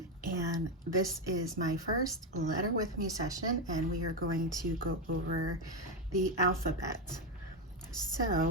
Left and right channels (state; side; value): normal; both; correlation 0.09